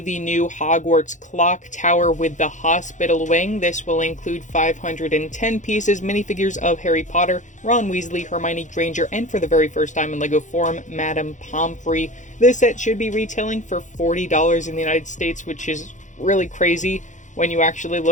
new Hogwarts Clock Tower with the Hospital Wing. This will include 510 pieces, minifigures of Harry Potter, Ron Weasley, Hermione Granger, and for the very first time in LEGO form, Madame Pomfrey. This set should be retailing for $40 in the United States, which is really crazy when you actually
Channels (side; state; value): right; late; 0.36 ms